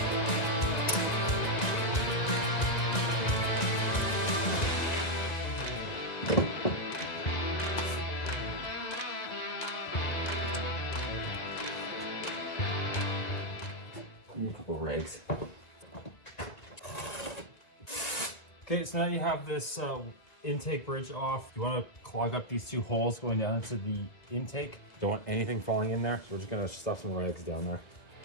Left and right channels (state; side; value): late; right; 1.9 ms